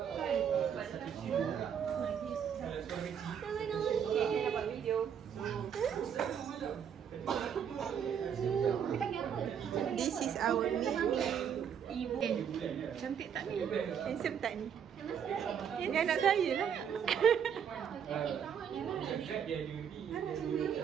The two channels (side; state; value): left; quieter; 8.1 dB